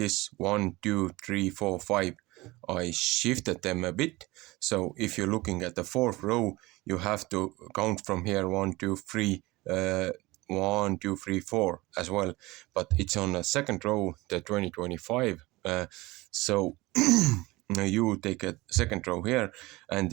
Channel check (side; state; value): left; quieter; 21.1 dB